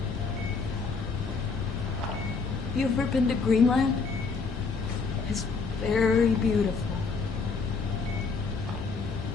Have you ever been to Greenland? It's very beautiful.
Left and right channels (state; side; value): quieter; right; 4.7 dB